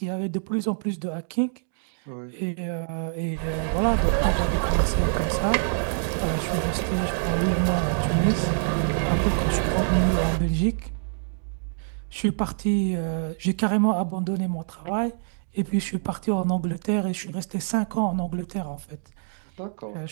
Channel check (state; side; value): silent; left; digital silence